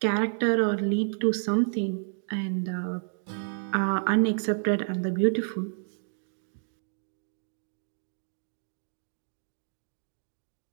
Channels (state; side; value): silent; left; digital silence